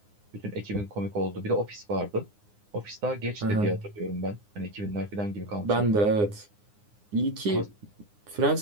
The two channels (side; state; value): left; late; 9.7 ms